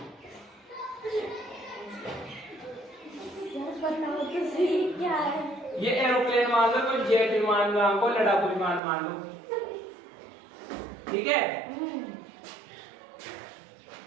क्या है ये एरोप्लेन मान लो, कोई जेट विमान मान लो, लड़ाकू विमान मान लो, ठीक है।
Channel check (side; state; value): left; drops out; at 8.8 s